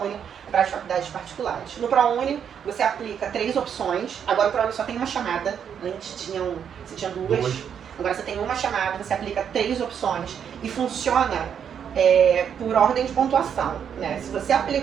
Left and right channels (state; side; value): quieter; left; 8.1 dB